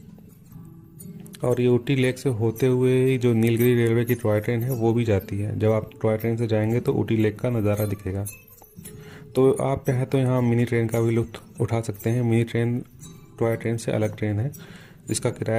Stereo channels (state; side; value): identical; both; correlation 1.00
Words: और ये ऊटी लेक से होते हुए जो नीलगिरी रेलवे की टॉय ट्रेन है वो भी जाती है। जब आप टॉय ट्रेन से जाएंगे तो ऊटी लेक का नज़ारा दिखेगा। तो आप चाहे तो यहाँ मिनी ट्रेन का भी लुत्फ उठा सकते हैं। मिनी ट्रेन टॉय ट्रेन से अलग ट्रेन है, जिसका